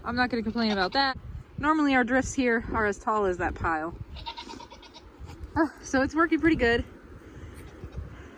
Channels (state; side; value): identical; both; correlation 1.00